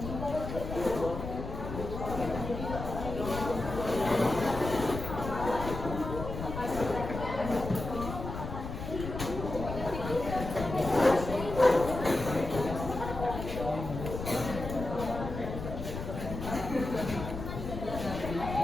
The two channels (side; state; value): left; noise; rumble, 7 dB below the sound